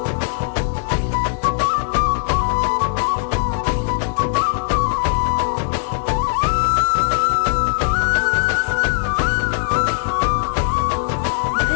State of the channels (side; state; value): right; silent; digital silence